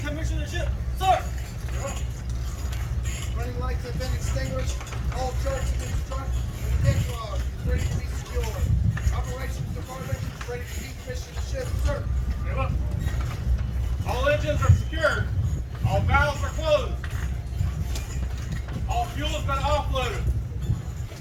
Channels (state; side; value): identical; both; correlation 1.00